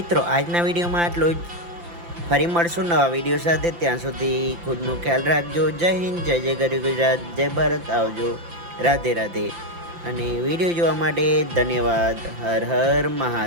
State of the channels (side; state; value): left; late; 5.8 ms